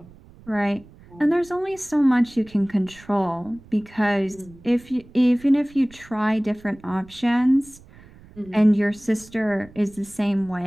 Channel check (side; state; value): right; noise; rumble, 23 dB below the sound